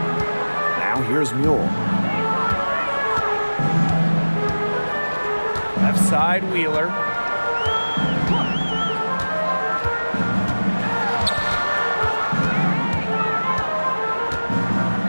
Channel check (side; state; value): both; inverted; correlation -1.00